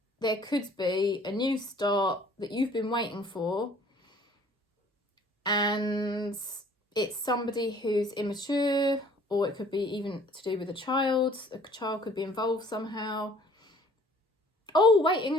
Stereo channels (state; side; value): normal; both; correlation 0.54